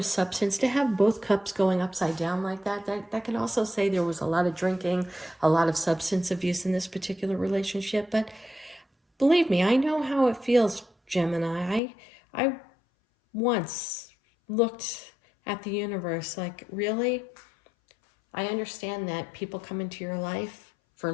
substance, to have both cups going upside down like that can also say there was a lot of drinking, a lot of substance abuse in this particular relationship. But believe me, I know how it feels, Gemini. I once looked at the universe like, really? I understand that people come into your life for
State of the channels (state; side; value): drops out; right; at 11.8 s